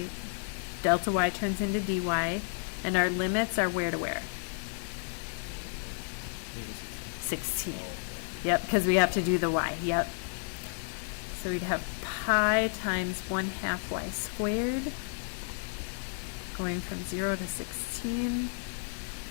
delta y turns into dy, and our limits are where to where? 16. Yep, because we have to do the y. Yep. So we'd have pi times 1/2 y squared, going from 0 to 16.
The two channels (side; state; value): right; silent; digital silence